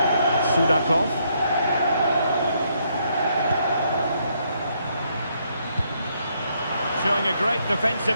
Sudakov. Showing a great defensive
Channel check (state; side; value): inverted; both; correlation -0.73